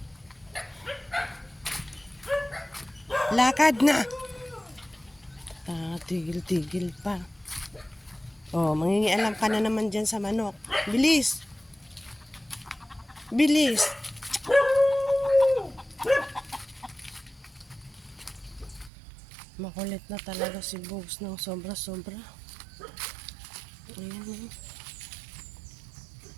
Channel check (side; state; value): left; drops out; at 18.9 s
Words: Lakad na! Tigil-tigil pa. Oh, mangingialam ka na naman dyan sa manok. Bilis! Bilis! Makulit na talaga si Bogs ng sobra-sobra. Ayan.